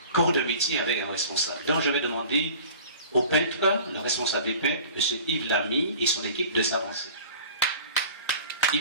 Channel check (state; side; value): inverted; both; correlation -0.43